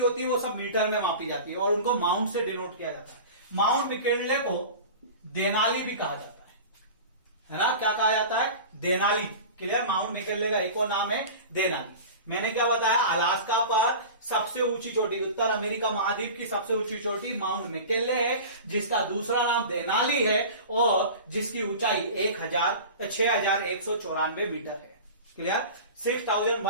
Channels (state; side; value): inverted; both; correlation -0.35